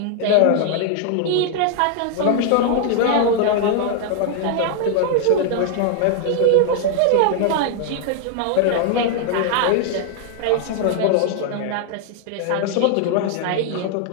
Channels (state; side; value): different; both; correlation 0.00